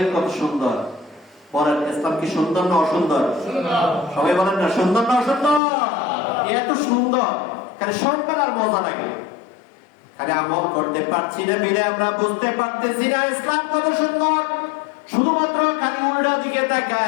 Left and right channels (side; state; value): right; drops out; at 5.6 s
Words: কত সুন্দর বলেন! ইসলাম কি সুন্দর না অসুন্দর? সবাই বলেন না, সুন্দর না অসুন্দর? এত সুন্দর, খালি শুনবেন আর মজা লাগে। খালি আমল করতে পারছি না বিলে আমরা বুঝতে পারতেছি না ইসলাম কত সুন্দর। শুধুমাত্র খালি উল্টা দিকে